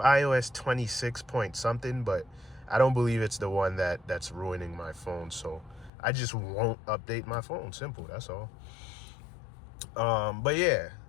26 point something, but I don't believe it's the one that's ruining my phone. So I just won't update my phone. Simple, that's all. But yeah,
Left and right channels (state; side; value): drops out; right; at 5.9 s